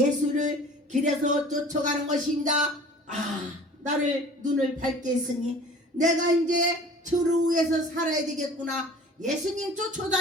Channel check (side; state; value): both; normal; correlation 0.45